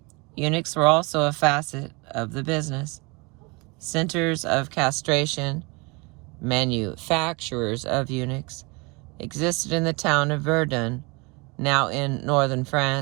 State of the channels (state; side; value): quieter; left; 28.0 dB